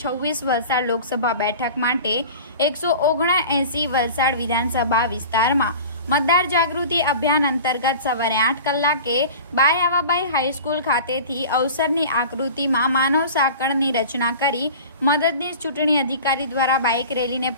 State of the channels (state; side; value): inverted; both; correlation -0.38